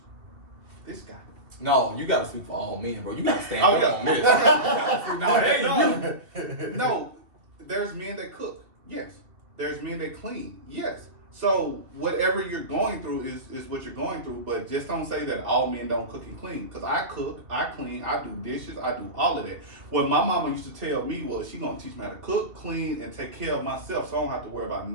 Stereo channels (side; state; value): left; late; 2.7 ms